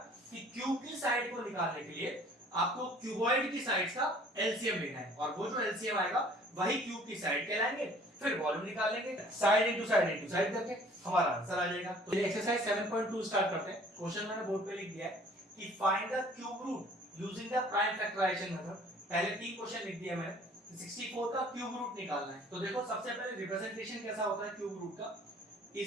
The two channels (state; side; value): normal; both; correlation 0.53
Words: कि क्यूब की साइड को निकालने के लिए आपको क्यूबॉइड की साइड्स का एलसीएम लेना है, और वो जो एलसीएम आएगा वही क्यूब की साइड कहलाएंगे। फिर वॉल्यूम निकाल लेंगे, साइड इनटू साइड करके हमारा आंसर आ जाएगा। तो ये एक्सरसाइज 7.2 स्टार्ट करते हैं। क्वेश्चन मैंने बोर्ड पे लिख दिया है कि find the cube root using the prime factorisation method. पहले 3 क्वेश्चन लिख दिया मैंने, 64 का क्यूब रूट निकालना है। तो देखो सबसे पहले रिप्रेजेंटेशन कैसा होता है क्यूब रूट का,